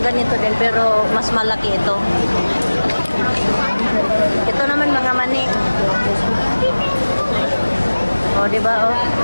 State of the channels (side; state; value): both; inverted; correlation -1.00